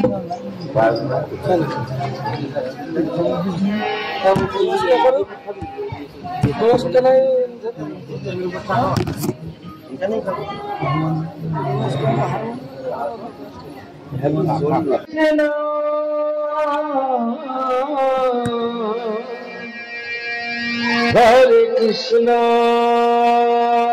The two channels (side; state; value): both; identical; correlation 1.00